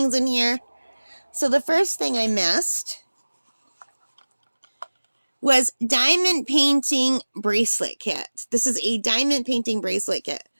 in here. So the first thing I missed was diamond painting bracelet kit. This is a diamond painting bracelet kit.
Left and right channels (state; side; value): inverted; both; correlation -1.00